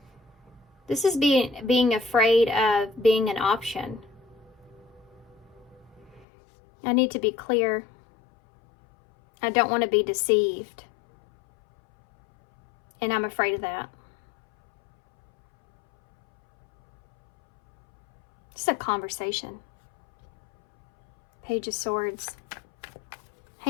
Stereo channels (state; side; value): drops out; right; at 6.2 s